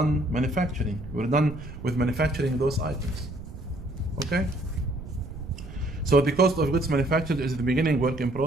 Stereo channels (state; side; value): noise; right; rumble, 12 dB below the sound